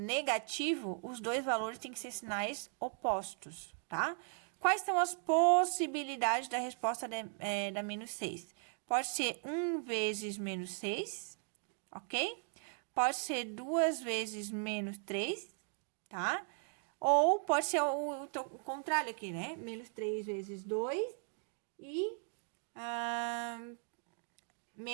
os dois valores têm que ser sinais opostos, tá? Quais são as possibilidades da resposta da menos 6? Pode ser 1 vezes menos 6, ok? Pode ser 2 vezes menos 3, tá? Ou pode ser o contrário aqui, né? Menos 3 vezes 2 e...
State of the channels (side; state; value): left; silent; 53 dB below the other